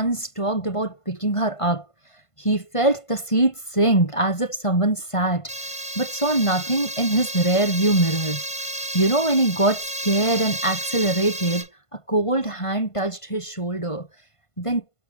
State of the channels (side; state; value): right; late; 1.5 ms